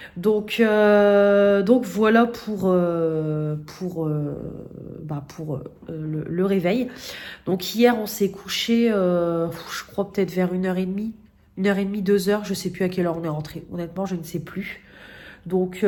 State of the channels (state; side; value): identical; both; correlation 1.00